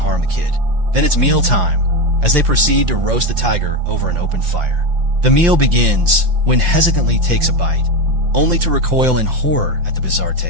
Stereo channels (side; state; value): left; late; 5.8 ms